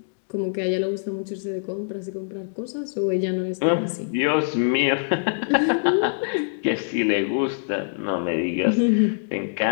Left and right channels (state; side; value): silent; right; digital silence